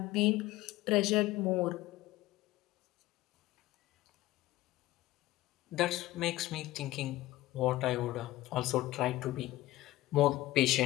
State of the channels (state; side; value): quieter; right; 16.9 dB